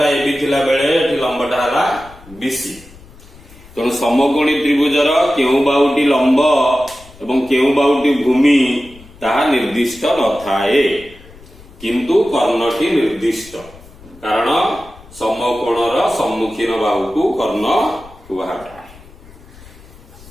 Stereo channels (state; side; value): noise; left; rumble, 22 dB below the sound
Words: एबी थिला बेले एठी लंबटा हला बीसी। तेणु समकोणी त्रिभुजर केउ बाहुटी लंब एवं केउ बाहुटी भूमि ताहा निर्दिष्ट नथाए, किंतु कर्णटी निर्दिष्ट। कारण समकोणर सम्मुखीन बाहु को कर्ण कुहाଯାଏ।